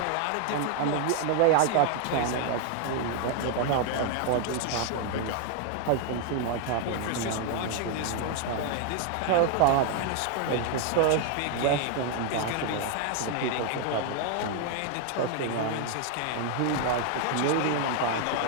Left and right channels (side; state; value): both; different; correlation 0.01